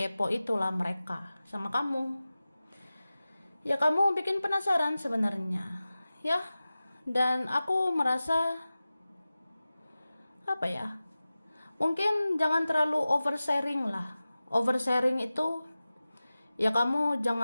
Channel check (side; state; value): both; inverted; correlation -0.96